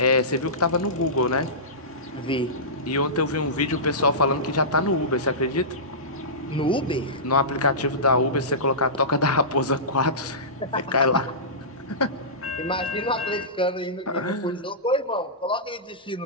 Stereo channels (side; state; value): both; normal; correlation -0.19